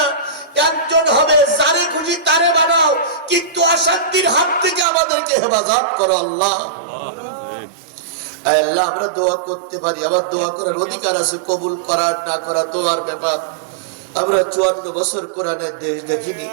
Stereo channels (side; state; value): left; drops out; at 4.9 s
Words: একজন হবে। যারে খুশি তারে বানাও, কিন্তু অশান্তির হাত থেকে আমাদেরকে হেফাজত করো আল্লাহ। আল্লাহ আমরা দোয়া করতে পারি, আবার দোয়া করার অধিকার আছে, কবুল করার না করা দোয়ার ব্যাপার। আমরা 54 বছর কোরআনের দেশ দেখিনি,